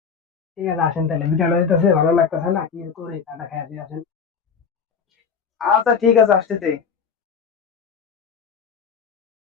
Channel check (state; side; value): quieter; right; 6.3 dB